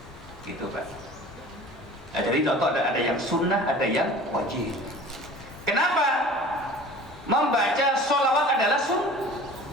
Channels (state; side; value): normal; both; correlation 0.42